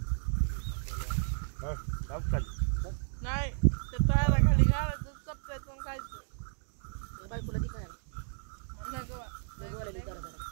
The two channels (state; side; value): silent; left; digital silence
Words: नाही ते तळाला खाली घालायचं चपटायचं आणि खायचं त्या बायकोला ती काय म्हणलं गं बा. बोलायला करा जरा